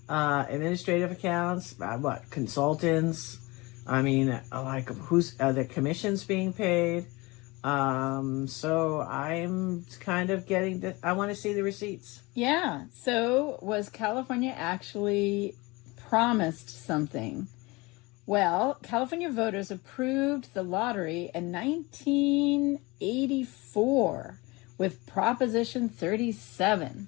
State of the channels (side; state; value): right; quieter; 24.0 dB